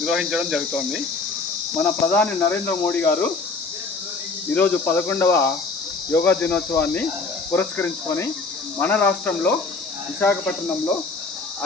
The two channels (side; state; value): right; quieter; 4.0 dB